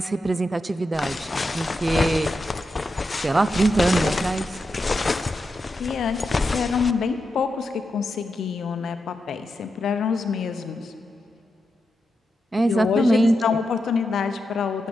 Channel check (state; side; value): normal; both; correlation 0.87